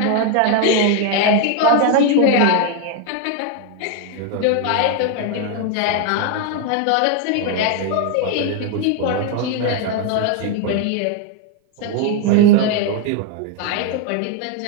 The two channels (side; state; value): both; different; correlation 0.01